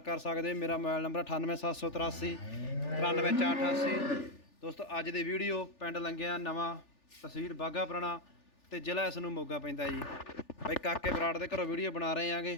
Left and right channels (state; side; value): late; right; 3.4 ms